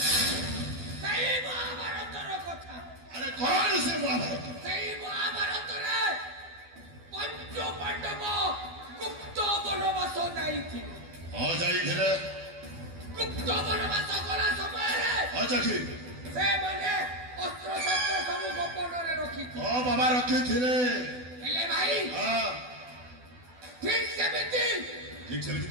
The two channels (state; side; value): late; left; 12 ms